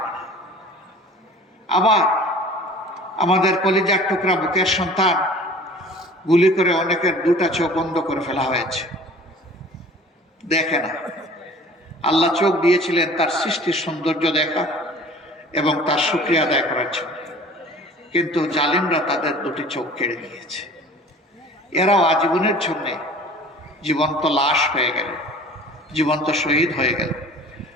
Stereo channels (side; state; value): both; normal; correlation 0.46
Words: না। আবার আমাদের কলিজার টুকরা বুকের সন্তান, গুলি করে অনেকের 2টা চোখ বন্ধ করে ফেলা হয়েছে, দেখে না। আল্লাহ চোখ দিয়েছিলেন তার সৃষ্টির সৌন্দর্য দেখা এবং তার শুকরিয়া আদায় করার জন্য, কিন্তু জালিমরা তাদের 2টি চোখ কেড়ে নিয়েছে। এরাও আজীবনের জন্য জীবন্ত লাশ হয়ে গেল, জীবন্ত শহীদ হয়ে গেল।